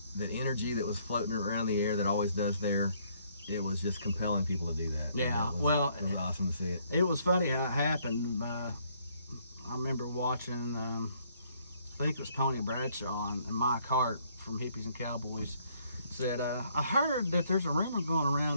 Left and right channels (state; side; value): inverted; both; correlation -0.67